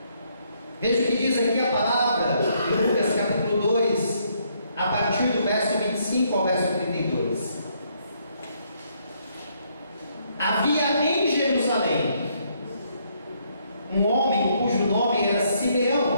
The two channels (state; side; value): inverted; both; correlation -0.71